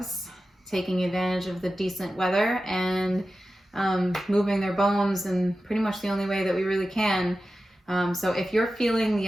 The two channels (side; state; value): both; normal; correlation 0.93